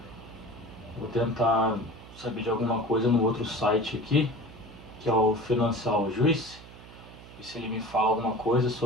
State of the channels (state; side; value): noise; right; hum, 18 dB below the sound